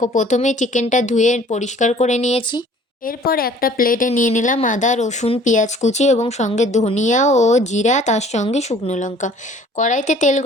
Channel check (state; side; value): normal; both; correlation 0.53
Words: প্রথমেই চিকেনটা ধুয়ে পরিষ্কার করে নিয়েছি। এরপর একটা প্লেটে নিয়ে নিলাম আদা রসুন পেঁয়াজ কুচি এবং সঙ্গে ধনিয়া ও জিরা, তার সঙ্গে শুকনো লঙ্কা। কড়াইতে তেল